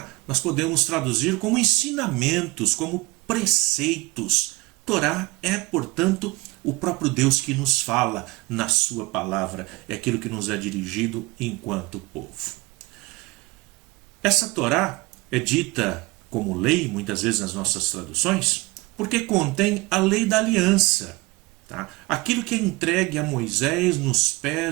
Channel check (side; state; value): left; quieter; 22.9 dB